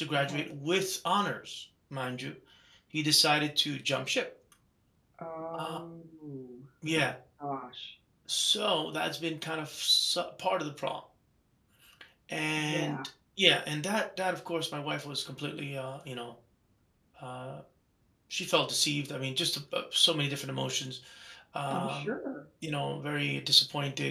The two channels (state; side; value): identical; both; correlation 1.00